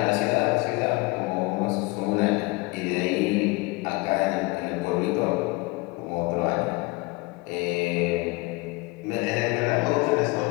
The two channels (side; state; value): right; quieter; 24.0 dB